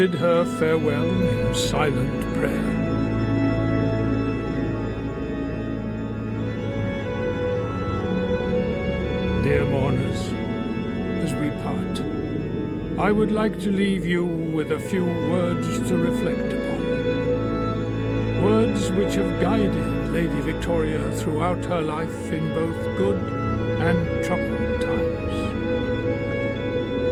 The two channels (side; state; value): both; identical; correlation 1.00